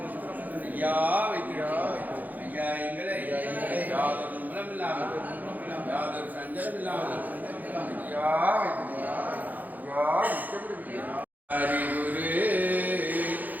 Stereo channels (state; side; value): late; left; 0.082 ms